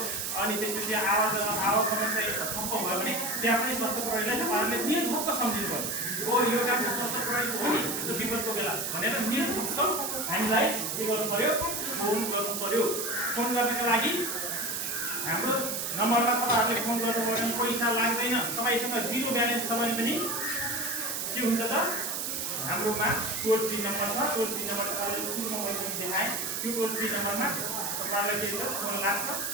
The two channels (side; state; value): right; noise; hiss, 2 dB below the sound